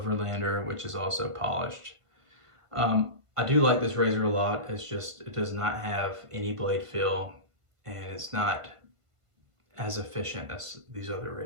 which is also polished. I do like this razor a lot. It's just, it does not have any blade fill, and it's not as efficient as these other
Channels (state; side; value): late; left; 1.5 ms